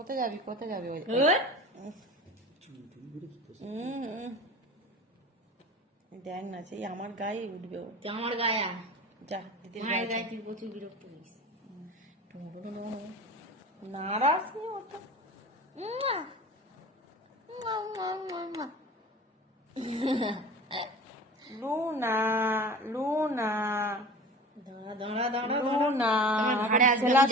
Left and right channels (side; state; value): both; normal; correlation 0.36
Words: যাবি? কোথায় যাবি? ওই দেখ না, সেই আমার গায়ে উঠবে ও। আমার গায়ে আয়। যা দিদির মায়ের গায়ে গায়ে যা। তুই প্রচুর বিরক্ত করিস। নারাজ নেই ওটা। লুনা লুনা দাঁড়া দাঁড়া দাঁড়া লুনা, আমার ঘাড়ে আসবে, খেলার আমি